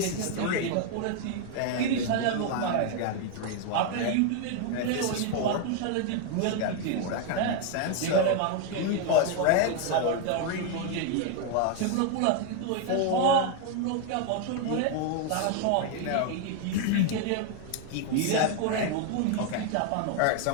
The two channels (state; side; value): different; both; correlation 0.01